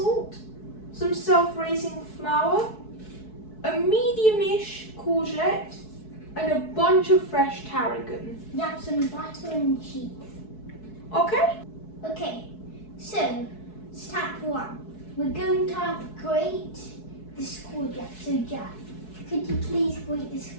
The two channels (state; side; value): late; right; 4.7 ms